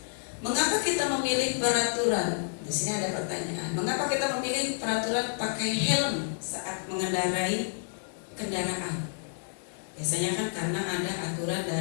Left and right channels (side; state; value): right; silent; digital silence